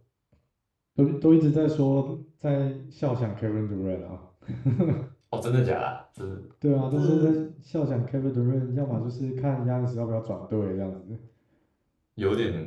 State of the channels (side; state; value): both; identical; correlation 1.00